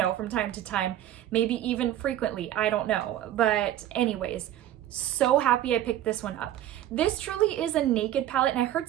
from time to time, maybe even frequently, I don't know. But anyways, so happy I picked this one up. This truly is a naked palette, and I heard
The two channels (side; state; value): left; quieter; 12.4 dB